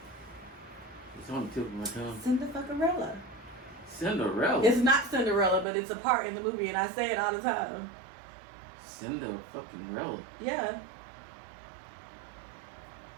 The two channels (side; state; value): left; drops out; at 5.7 s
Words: It's on the tip of my tongue. Cinderella. Cinderella? It's not Cinderella, but it's a part in the movie, and I say it all the time. Cinderella? Yeah.